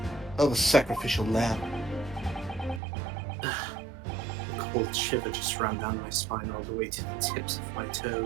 of a sacrificial lamb. A cold shiver just ran down my spine all the way to the tips of my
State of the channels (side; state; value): left; drops out; at 2.8 s